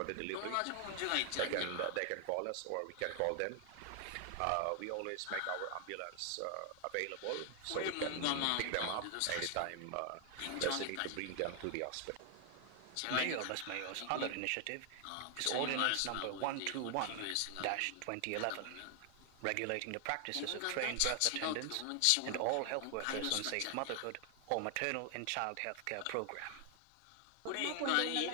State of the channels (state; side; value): different; both; correlation 0.00